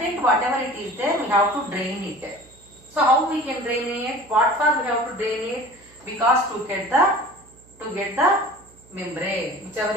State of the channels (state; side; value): noise; right; hum, 27 dB below the sound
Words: whatever it is there, we have to drain it. So how we can drain it? What for we have to drain it? Because to get the membrane whichever